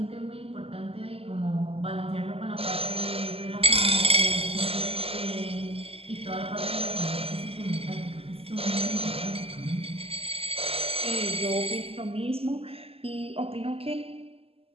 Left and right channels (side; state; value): left; late; 0.28 ms